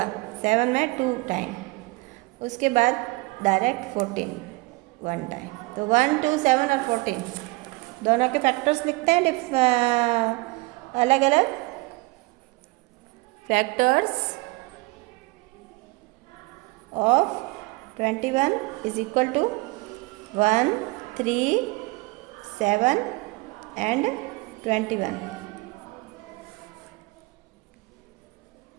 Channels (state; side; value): quieter; left; 24.6 dB